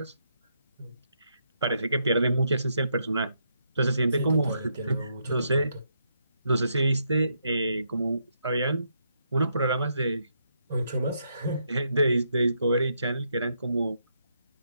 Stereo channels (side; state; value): both; inverted; correlation -0.78